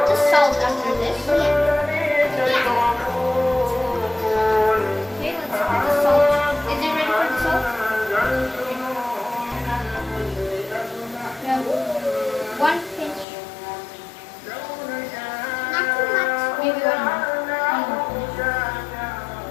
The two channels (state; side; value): drops out; right; at 13.2 s